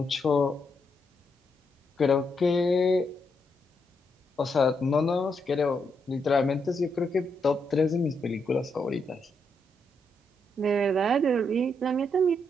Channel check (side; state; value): both; normal; correlation 0.79